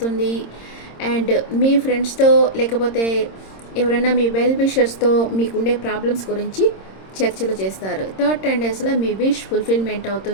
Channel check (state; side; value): late; right; 26 ms